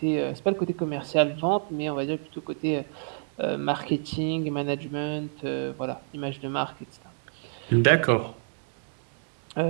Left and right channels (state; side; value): silent; left; digital silence